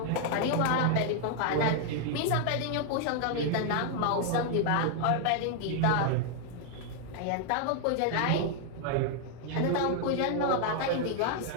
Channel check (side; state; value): both; different; correlation 0.00